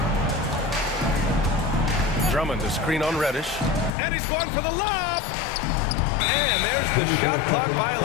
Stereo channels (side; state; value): right; drops out; at 3.9 s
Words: Drummond to screen on Reddish. And he's going for the lob! And there's the shot clock